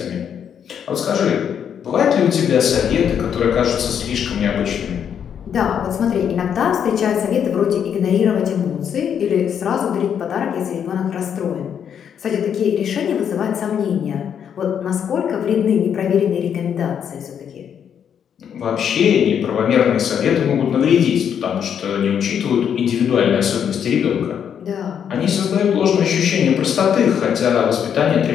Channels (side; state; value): right; quieter; 8.3 dB